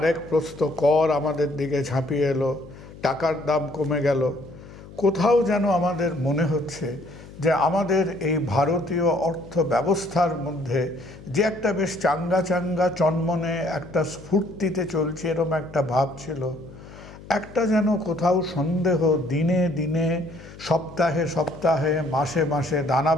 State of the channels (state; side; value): noise; left; hum, 18 dB below the sound